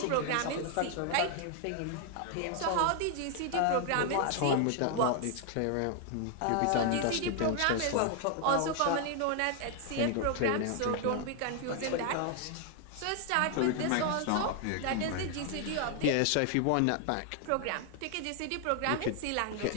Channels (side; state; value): both; different; correlation 0.00